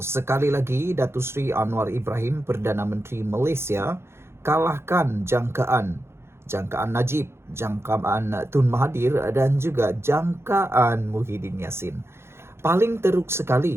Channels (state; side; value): late; left; 0.12 ms